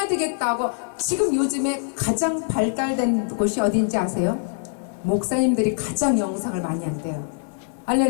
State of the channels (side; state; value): right; silent; 63 dB below the other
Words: 되겠다고 지금 요즘에 가장 발달된 곳이 어딘지 아세요? 목사님들이 가장 영상을 많이 한대요.